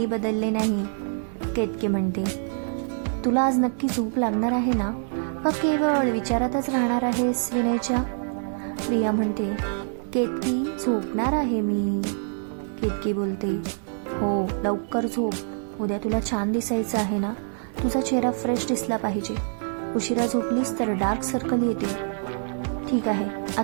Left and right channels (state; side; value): silent; left; 61 dB below the other